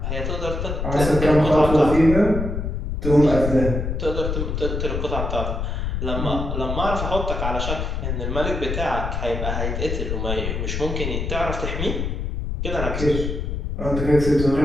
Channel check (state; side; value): noise; left; rumble, 3 dB below the sound